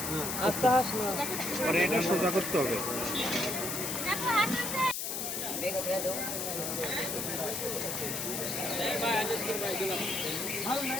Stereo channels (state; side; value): noise; left; hiss, 2 dB below the sound